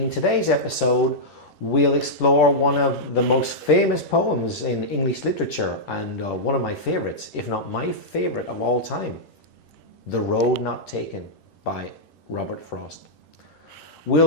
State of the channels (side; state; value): right; late; 10 ms